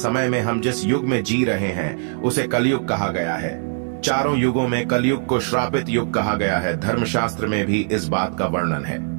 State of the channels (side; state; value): left; silent; digital silence